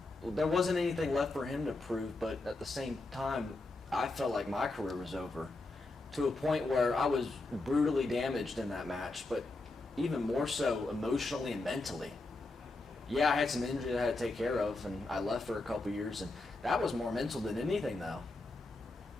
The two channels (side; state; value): right; quieter; 3.1 dB